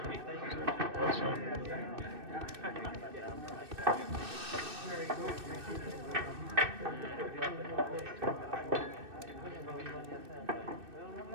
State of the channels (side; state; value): left; late; 2.6 ms